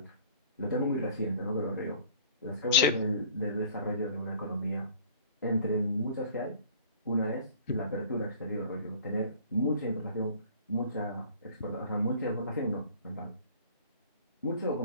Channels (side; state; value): both; inverted; correlation -0.49